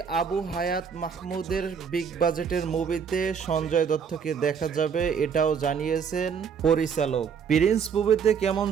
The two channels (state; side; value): quieter; left; 6.8 dB